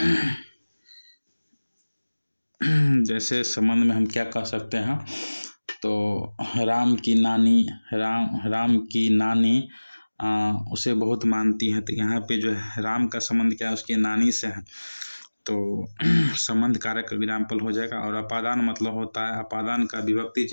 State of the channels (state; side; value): inverted; both; correlation -1.00